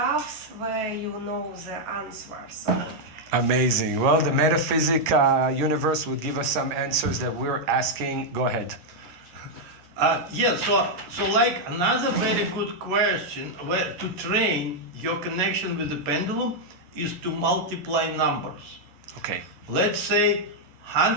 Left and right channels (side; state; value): left; late; 11 ms